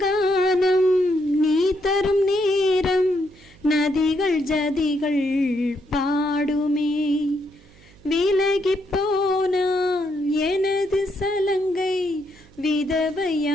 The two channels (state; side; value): noise; right; hum, 26 dB below the sound